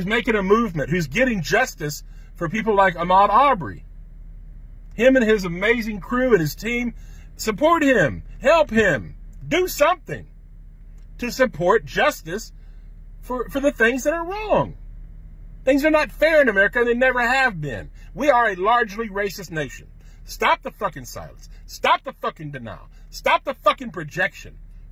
a movement, who's getting justice for people like Ahmaud Arbery. Him and his amazing crew and his team, support him, help him, do something to support justice for the things that are wrong. Things are not fair in America, and they never have been. We are a largely racist nation. Stop the fucking silence. Stop the fucking denial. Stop the fucking projection.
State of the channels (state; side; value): identical; both; correlation 1.00